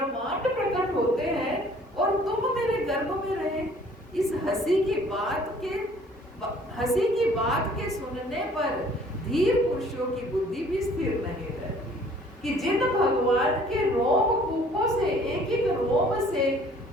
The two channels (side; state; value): both; normal; correlation 0.55